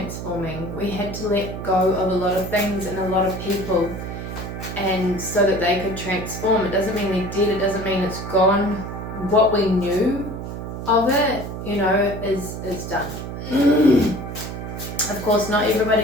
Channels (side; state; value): right; noise; hum, 7 dB below the sound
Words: We had to let go of a lot of things and a lot of people, and so that they could transform. It doesn't mean they're dead, it doesn't mean it's gone. What we knew of it, you know, is done. Of course, not